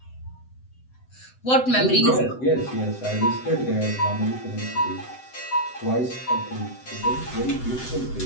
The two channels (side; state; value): right; late; 7.8 ms